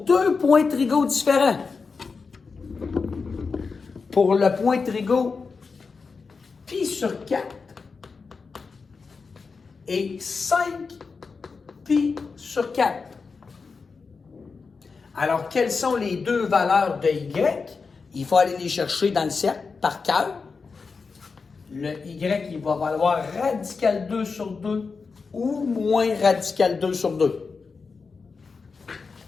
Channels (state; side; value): quieter; right; 4.8 dB